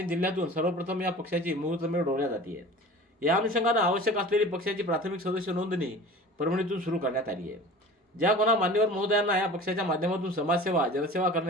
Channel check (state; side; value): normal; both; correlation 0.39